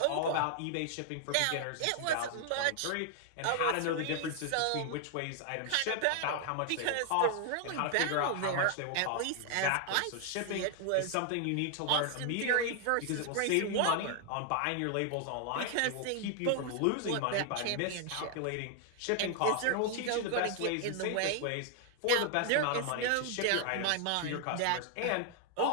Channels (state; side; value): different; both; correlation 0.00